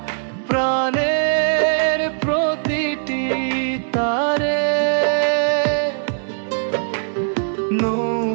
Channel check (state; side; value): silent; left; digital silence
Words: প্রাণের প্রতিটি তারে,